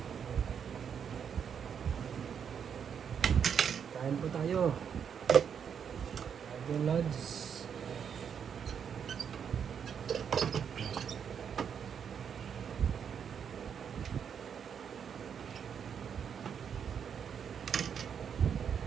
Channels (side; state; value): left; quieter; 7.5 dB